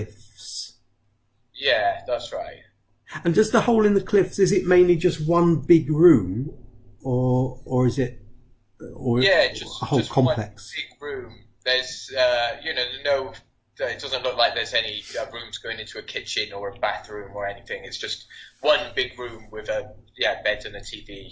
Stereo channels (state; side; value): identical; both; correlation 1.00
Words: Yeah, that's right. And does the hole in the cliffs, is it mainly just one big room, or is it, just a whole just complex? one big room. There's, it doesn't look like there's any rooms going into a kitchen or a bathroom or anything. It's just one big room with a bed and a